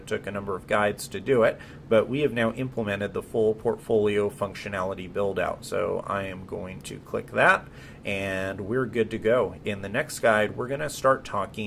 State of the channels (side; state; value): both; identical; correlation 1.00